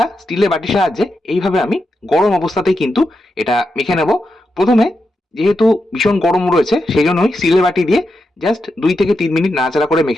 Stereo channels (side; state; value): both; normal; correlation 0.87